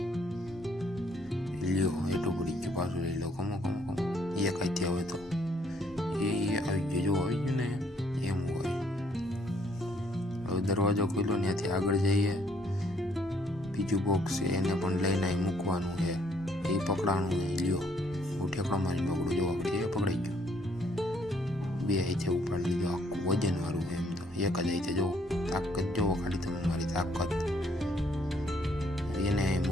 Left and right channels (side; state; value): both; normal; correlation 0.66